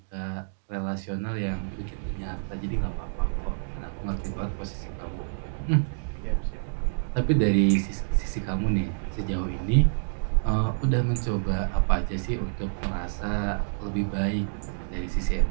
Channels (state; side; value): silent; left; digital silence